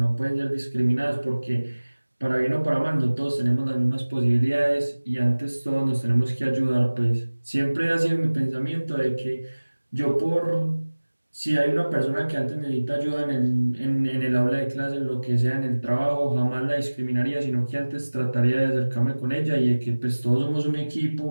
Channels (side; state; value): both; inverted; correlation -1.00